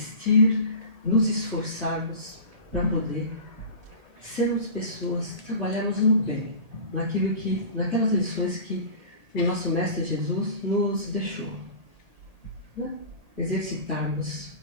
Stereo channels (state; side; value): late; left; 1.8 ms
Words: nos esforçarmos para poder sermos pessoas, trabalharmos no bem, naquelas lições que o nosso Mestre Jesus nos deixou, né? Exercitarmos